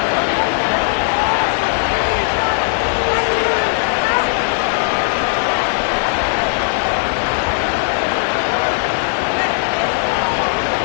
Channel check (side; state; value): right; silent; digital silence